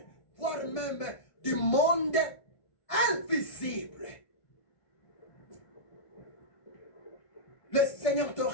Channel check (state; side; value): late; right; 1.5 ms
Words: voire même du monde invisible. Le Seigneur te